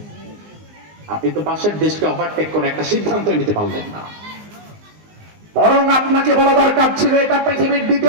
আপনি তো পাশের দেশকে ওভারটেক করে একটা সিদ্ধান্ত নিতে পারলেন না। বরং আপনাকে বলা দরকার ছিল এটা পৃথিবীর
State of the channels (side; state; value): left; late; 19 ms